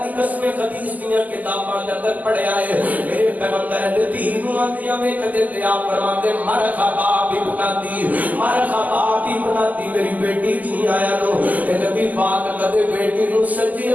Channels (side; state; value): left; late; 0.080 ms